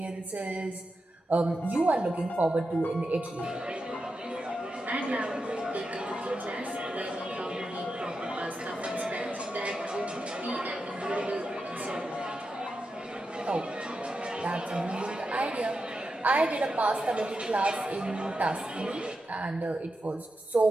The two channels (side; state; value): both; normal; correlation 0.88